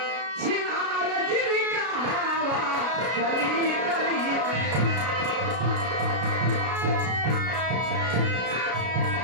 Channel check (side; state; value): left; late; 33 ms